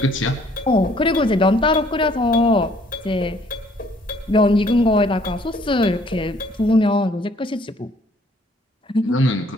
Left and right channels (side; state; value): both; normal; correlation 0.61